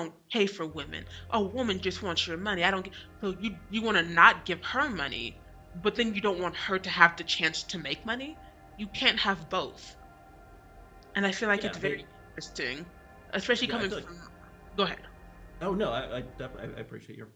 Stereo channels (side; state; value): both; identical; correlation 1.00